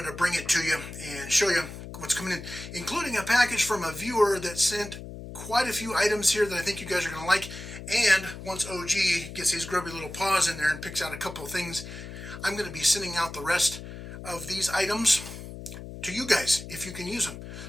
to bring it to you and show you what's coming in, including a package from a viewer that sent quite a few items here that I think you guys are going to like. And once OG gets his grubby little paws in there and picks out a couple of things, I'm going to be sending out the rest of these items to you guys if you can use them.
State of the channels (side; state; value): left; noise; hum, 11 dB below the sound